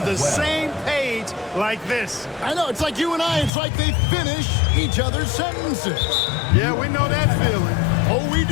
the same page teammates like this. I know, it's like you and I. It's like they finish each other's sentences. Yeah, we know that feeling. Oh, we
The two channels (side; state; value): right; drops out; at 3.5 s